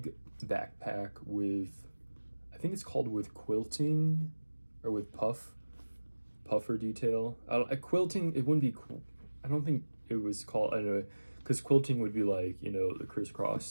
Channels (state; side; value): inverted; both; correlation -1.00